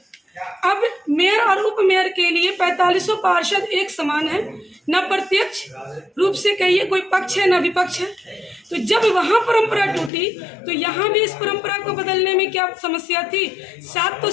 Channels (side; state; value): right; drops out; at 10.1 s